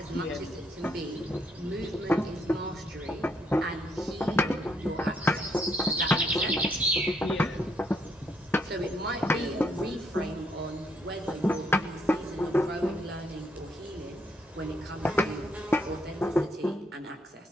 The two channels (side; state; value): both; normal; correlation 0.73